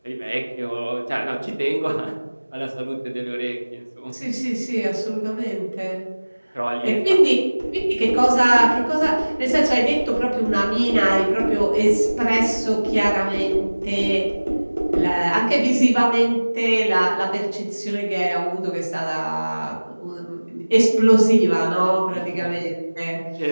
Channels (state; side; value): inverted; both; correlation -1.00